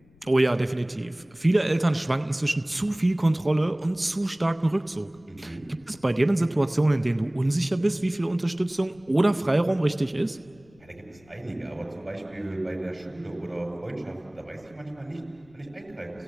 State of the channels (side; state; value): left; noise; rumble, 29 dB below the sound